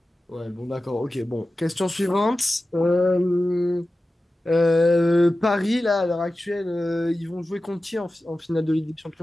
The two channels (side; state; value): both; normal; correlation 0.94